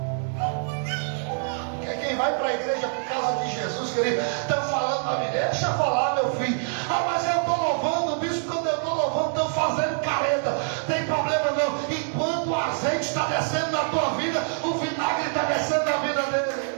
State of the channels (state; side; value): silent; left; 61 dB below the other